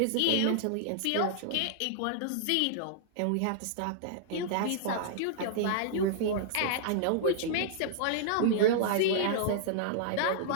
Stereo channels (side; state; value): both; different; correlation -0.01